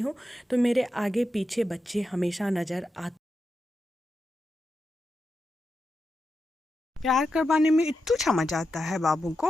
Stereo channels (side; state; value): both; normal; correlation 0.88